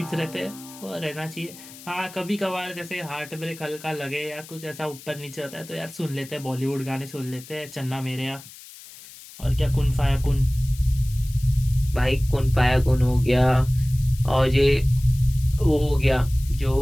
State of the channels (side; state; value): left; noise; hiss, 18 dB below the sound